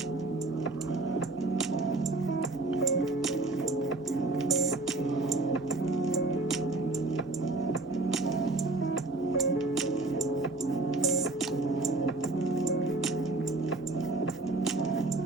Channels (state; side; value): quieter; left; 3.0 dB